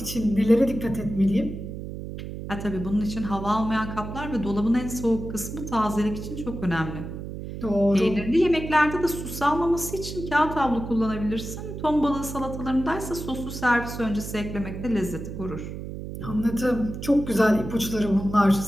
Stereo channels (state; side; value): noise; right; hum, 8 dB below the sound